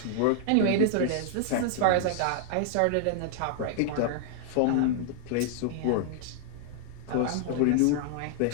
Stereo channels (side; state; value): both; different; correlation -0.01